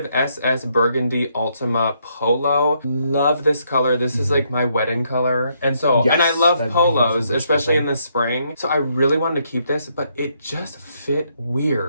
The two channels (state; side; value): inverted; both; correlation -0.74